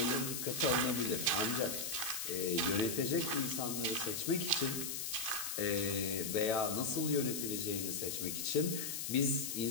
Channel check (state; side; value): noise; left; hiss, 3 dB below the sound